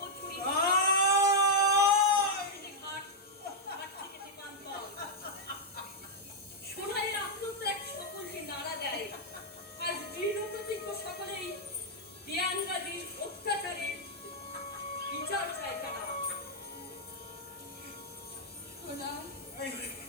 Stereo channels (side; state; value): both; normal; correlation -0.05